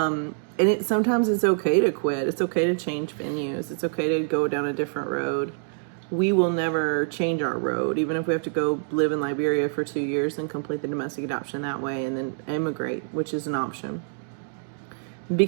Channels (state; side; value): silent; left; digital silence